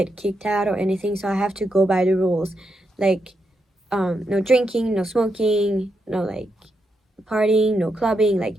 kicked out or anything, so I have to go by the rules, like no drinking, no smoking, no like partying, no clubbing, like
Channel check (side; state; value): both; normal; correlation 0.83